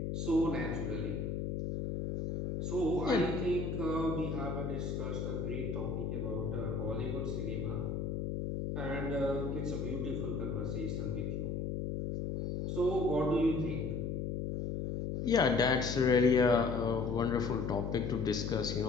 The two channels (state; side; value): noise; left; hum, 2 dB below the sound